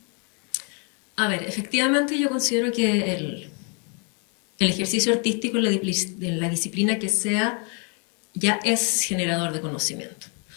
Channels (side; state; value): right; quieter; 37.4 dB